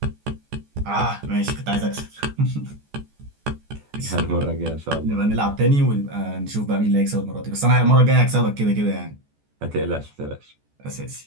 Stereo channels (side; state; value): left; late; 14 ms